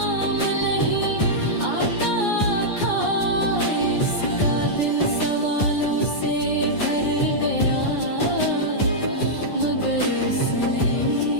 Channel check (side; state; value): right; late; 9.8 ms